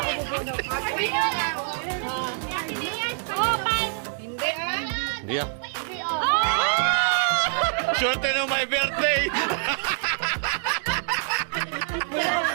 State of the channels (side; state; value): left; silent; digital silence